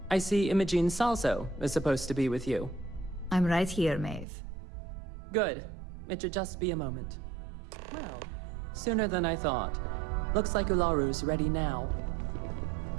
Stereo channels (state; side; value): drops out; left; at 4.2 s